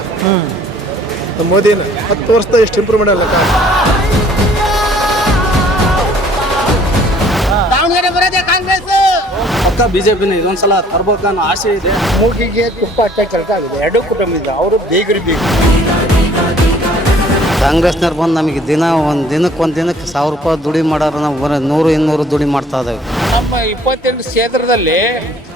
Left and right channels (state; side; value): normal; both; correlation 0.57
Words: ಮೋದಿನ 10 ವರ್ಷದ ಎಷ್ಟು ಇಂಪ್ರೂವ್ಮೆಂಟ್ ಅಲ್ಲ. ಪಕ್ಕ ಬಿಜೆಪಿನ ಇದೊಂದ್ಸಲ ತರ್ಬೇಕನ್ನೋ ಆಸೆ ಇದೆ. ಮೂಗಿಗೆ ತುಪ್ಪ ಹಚ್ಚ ಕೆಲಸ ಆಗಿದೆ. ಎರಡು ಕುಟುಂಬ ಅವರು ಬೇಗರಿ ಬೇಕು. ಕಾಂಗ್ರೆಸ್ನವ್ರು ಬಂದು ನಮಗೆ ಒಂದು ದಿನಕ್ಕೆ 1000 ರೂಪಾಯಿ ದುಡಿ ಮಾಡೋರು ನಾವು 100-200 ದುಡಿ ಮಾಡ್ತಾ ಇದ್ದೇವೆ. ನಮ್ಮ 28 ಕ್ಷೇತ್ರದಲ್ಲಿ